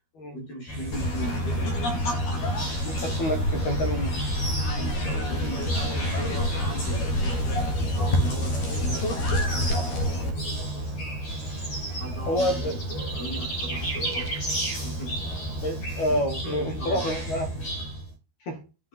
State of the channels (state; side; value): late; right; 13 ms